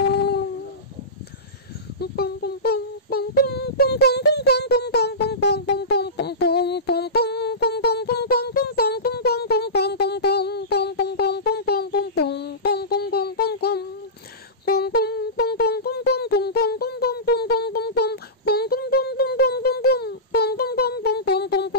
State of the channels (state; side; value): normal; both; correlation -0.19